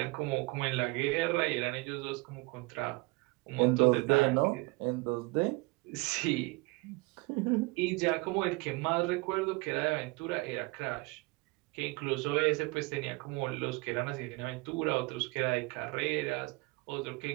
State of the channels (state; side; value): quieter; left; 25.7 dB